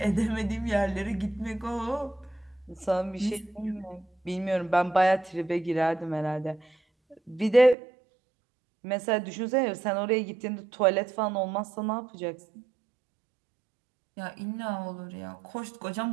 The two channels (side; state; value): left; drops out; at 7.8 s